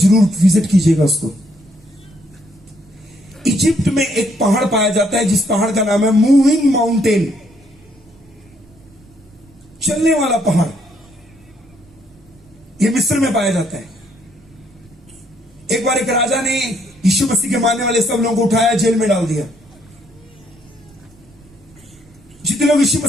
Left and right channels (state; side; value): noise; right; rumble, 28 dB below the sound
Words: विजिट कीजिएगा उसको। इजिप्ट में एक पहाड़ पाया जाता है जिस पहाड़ का नाम है मूविंग माउंटेन, चलने वाला पहाड़। यह मिस्र में पाया जाता है। एक बार एक राजा ने यीशु मसीह के मानने वाले सब लोगों को उठाया, जेल में डाल दिया। जितने लोग यीशु